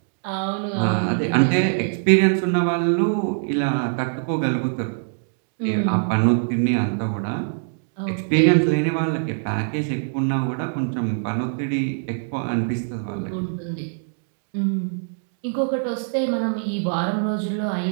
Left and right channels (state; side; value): silent; left; digital silence